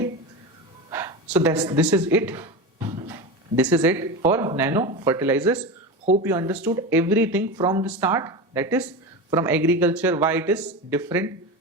so this is it. This is it for nano fertilizers. Hope you understood everything from the start, that is from agriculture, why it is different,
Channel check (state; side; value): normal; both; correlation 0.23